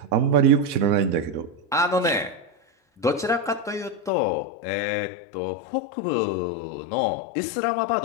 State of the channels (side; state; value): right; drops out; at 4.1 s